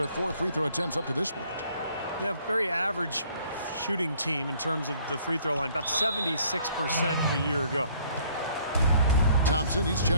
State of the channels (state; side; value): inverted; both; correlation -0.61